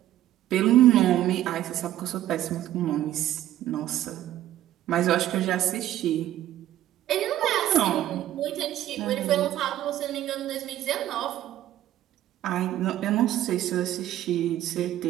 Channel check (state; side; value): quieter; left; 13.2 dB